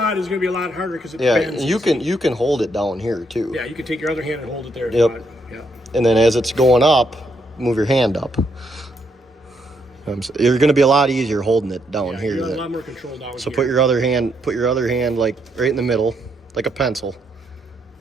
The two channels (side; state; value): both; normal; correlation 0.76